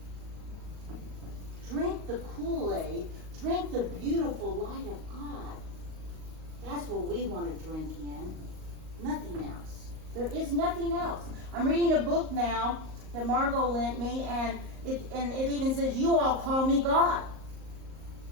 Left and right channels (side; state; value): left; late; 38 ms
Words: Drink the Kool-Aid. Drink the beautiful light of God. That's what we want to drink in. Nothing else. There is nothing else. I'm reading a book now that Margot lent me, and it even says, you all call me God.